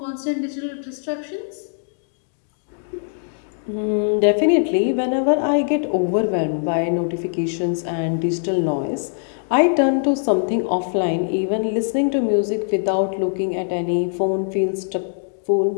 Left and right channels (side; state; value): right; silent; digital silence